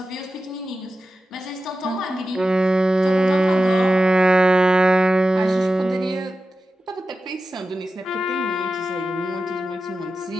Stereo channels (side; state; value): both; normal; correlation 0.93